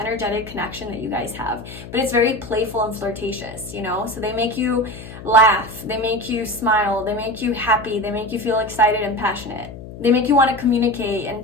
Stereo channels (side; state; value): left; noise; hum, 14 dB below the sound